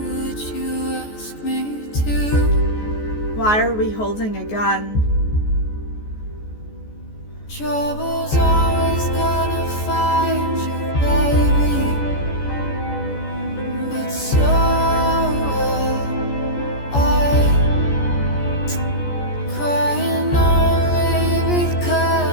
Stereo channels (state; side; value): late; right; 14 ms